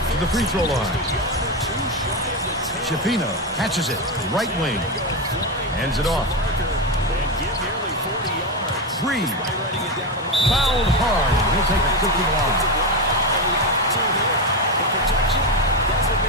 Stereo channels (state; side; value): normal; both; correlation 0.13